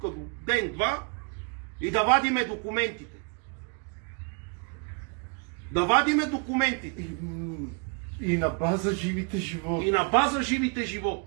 до ден-два, и да вадиме документите. Да вадиме документите. И на база живите животни. И на база живите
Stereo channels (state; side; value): quieter; left; 37.2 dB